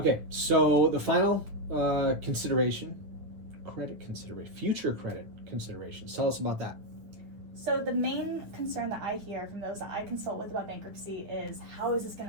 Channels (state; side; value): late; left; 9.5 ms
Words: so the final consideration, credit consideration, future credit considerations. Tell us about that. So the main concern that I hear from those that I consult with about bankruptcy is, how is this going